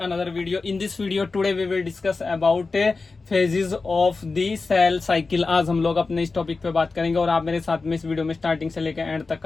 video. In this video today we will discuss about phases of the cell cycle. आज हम लोग अपने इस topic पे बात करेंगे और आप मेरे साथ में इस वीडियो में स्टार्टिंग से लेकर एंड तक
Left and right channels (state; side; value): quieter; right; 4.0 dB